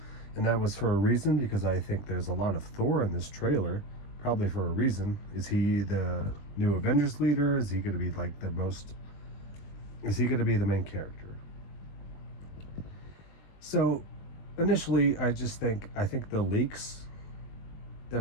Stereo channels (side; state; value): right; late; 20 ms